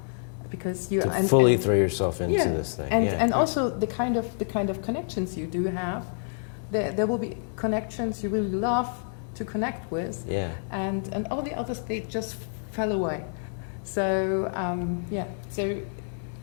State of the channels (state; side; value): silent; right; 59 dB below the other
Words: because you fully throw yourself into this thing. And also the kind of connections you do have. There will be connections you really love to connect with, and all the others, they just fell away. So so